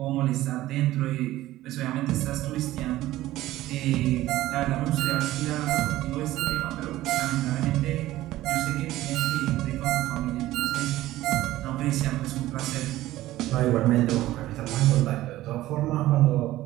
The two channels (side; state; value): left; quieter; 15.7 dB